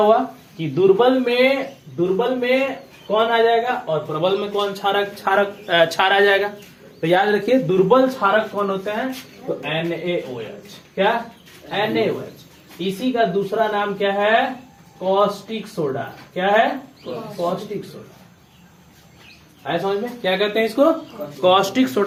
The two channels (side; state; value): both; identical; correlation 1.00